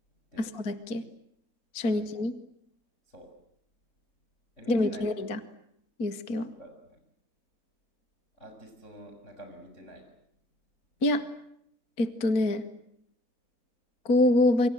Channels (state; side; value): late; right; 4.4 ms